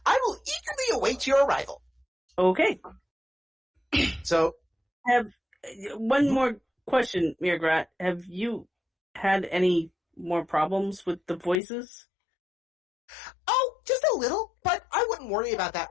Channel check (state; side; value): drops out; right; at 11.6 s